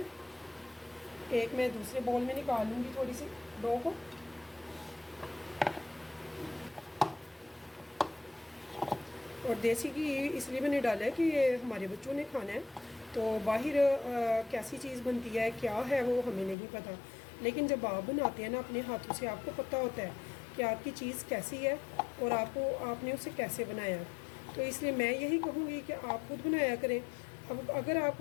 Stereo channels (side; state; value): right; drops out; at 16.6 s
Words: एक मैं दूसरे बाउल में निकाल लूँगी थोड़ी सी डो को। और देसी घी इसलिए मैंने डाला है कि ये हमारे बच्चों ने खाना है। तो बाहर कैसी चीज़ बनती है, क्या है, वो हमें नहीं पता। लेकिन जब आप बनाते हैं ना अपने हाथों से, आपको पता होता है कि आपकी चीज़ कैसी है और आपने उसे कैसे बनाया। तो इसलिए मैं यही कहूँगी कि आप खुद बनाया करें। अब अगर